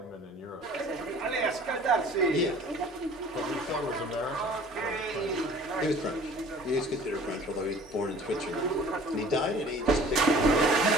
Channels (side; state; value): both; normal; correlation 0.49